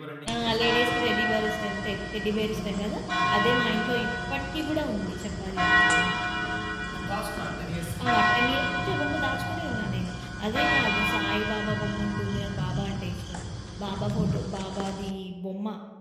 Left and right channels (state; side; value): identical; both; correlation 1.00